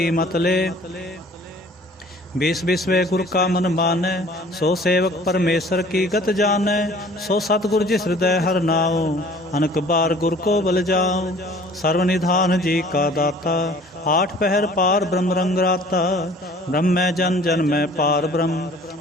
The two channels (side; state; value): both; normal; correlation 0.51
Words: मत ले। बीस बिस्वे गुर का मन मानै, सो सेवक परमेश्वर की गत जानै। सो सतगुर जिस हृदय हर नाओ, अनक बार गुर को बल जाओ। सर्वनिधान जी का दाता, आठ पहर पार ब्रह्म रंग राता। ब्रह्म जन जन में पार ब्रह्म,